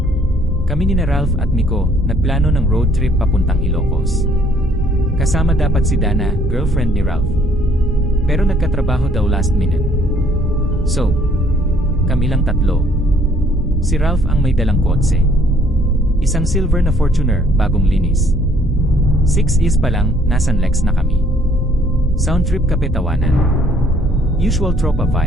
Kami ni Ralph at Miko nagplano ng road trip papuntang Ilocos. Kasama dapat si Dana, girlfriend ni Ralph. Pero nagkatrabaho daw last minute. So, kami lang tatlo. Si Ralph ang may dalang kotse. Isang silver na Fortuner, bagong linis. 6 years pa lang, nasa Lex na kami. Sound trip kapetawanan. Usual tropa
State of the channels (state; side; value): normal; both; correlation 0.62